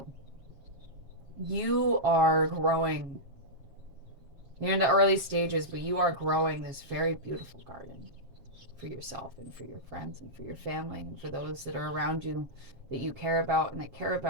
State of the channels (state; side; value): late; left; 7.5 ms